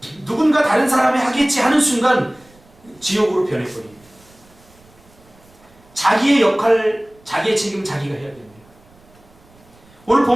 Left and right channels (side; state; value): right; noise; rumble, 29 dB below the sound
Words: 누군가 다른 사람이 하겠지 하는 순간 지옥으로 변해버립니다. 자기의 역할, 자기의 책임 자기가 해야 됩니다. 오늘